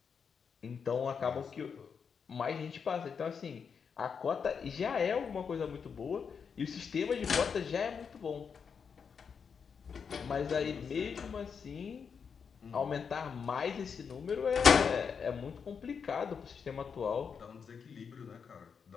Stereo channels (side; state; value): right; quieter; 6.3 dB